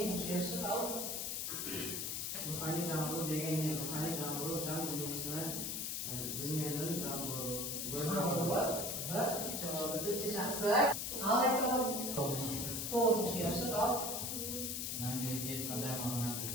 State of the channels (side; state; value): left; noise; hiss, 2 dB below the sound